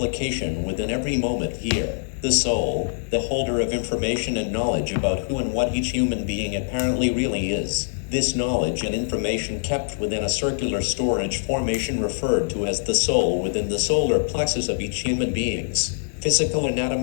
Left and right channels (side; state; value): right; silent; digital silence